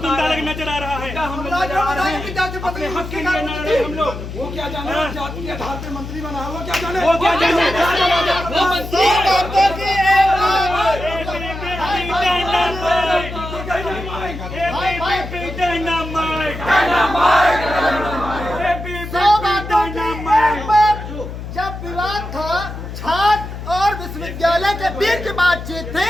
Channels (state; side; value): noise; left; hum, 9 dB below the sound